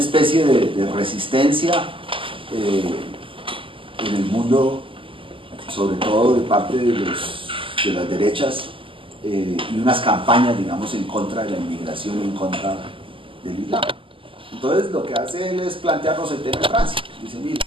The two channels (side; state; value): left; late; 0.25 ms